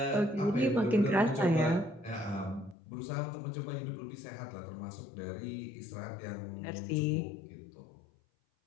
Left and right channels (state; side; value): drops out; right; at 2.8 s